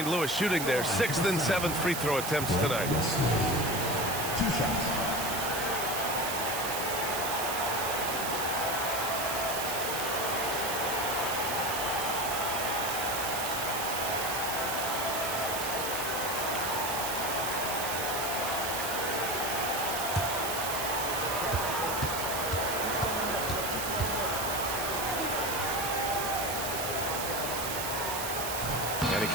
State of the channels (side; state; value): right; noise; hiss, 3 dB below the sound